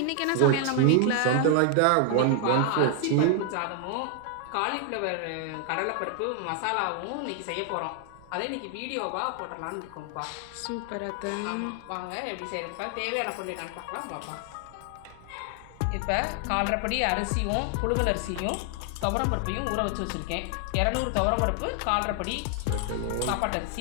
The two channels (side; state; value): both; different; correlation 0.00